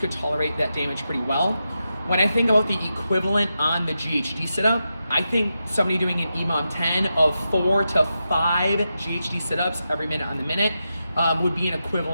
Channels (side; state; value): both; inverted; correlation -0.88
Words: tolerate that damage pretty well. When I think about the equivalent on the GHD sit-up, I think somebody doing an EMOM 10 of 4 to 5 GHD sit-ups every minute on the minute would be an